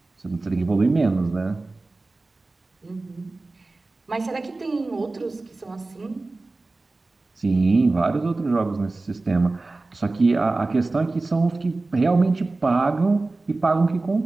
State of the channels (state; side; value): quieter; left; 3.3 dB